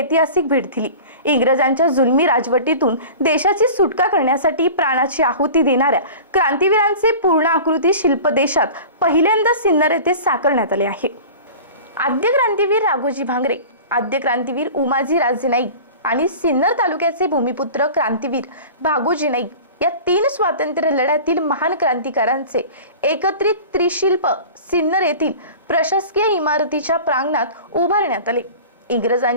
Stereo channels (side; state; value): both; inverted; correlation -0.38